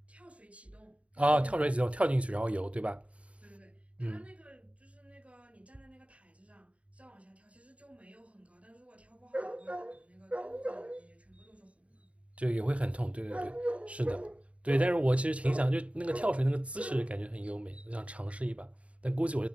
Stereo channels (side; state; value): left; late; 0.064 ms